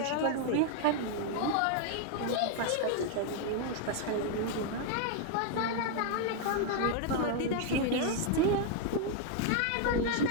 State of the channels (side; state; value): both; different; correlation 0.00